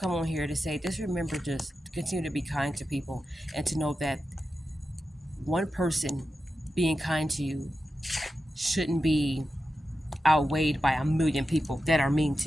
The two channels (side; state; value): both; normal; correlation 0.91